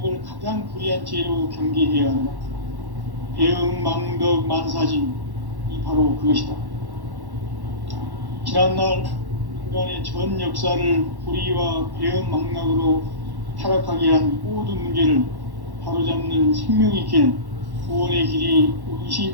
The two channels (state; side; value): late; left; 1.1 ms